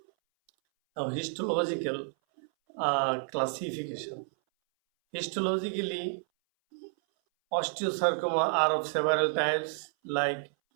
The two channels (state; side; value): silent; left; 58 dB below the other